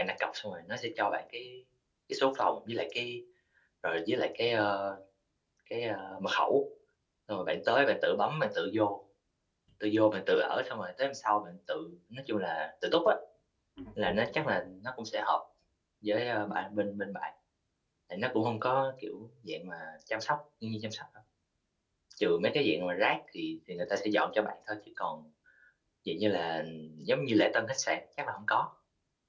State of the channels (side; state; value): both; identical; correlation 1.00